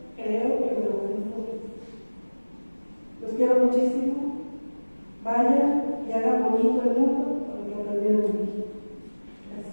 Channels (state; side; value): inverted; both; correlation -1.00